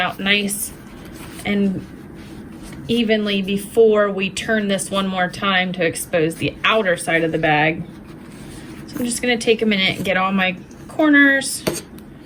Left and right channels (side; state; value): both; identical; correlation 1.00